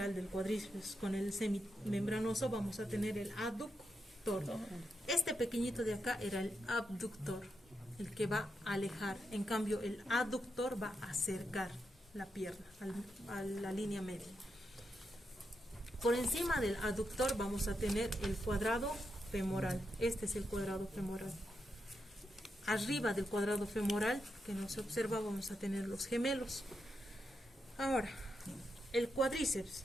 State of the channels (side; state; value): both; normal; correlation 0.85